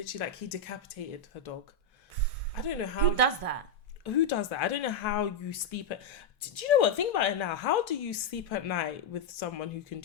like, he decapitated her dog. I don't know how. Who does that? Who does that? I don't know how you sleep at... Do you know what? Think about it now. How do you sleep at night with someone who can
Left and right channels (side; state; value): right; quieter; 3.4 dB